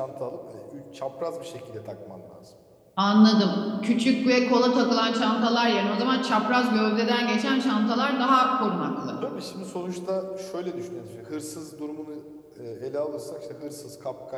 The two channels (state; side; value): identical; both; correlation 1.00